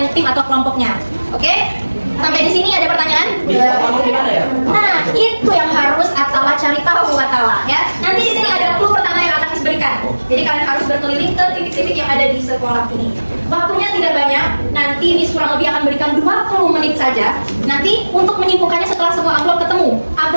tim atau kelompoknya. Oke? Sampai di sini ada pertanyaan? Nah, itu yang harus Atala cari tahu Atala ya. Nanti di sini ada clue pertama yang akan diberikan. Jadi kalian harus berkeliling ke titik-titik yang ada di sekolah ini. Waktunya tidak banyak. Nanti Miss kurang lebih akan berikan 20 menit saja. Nanti untuk menyimpulkannya setelah semua amplop ketemu.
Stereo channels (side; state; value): both; inverted; correlation -1.00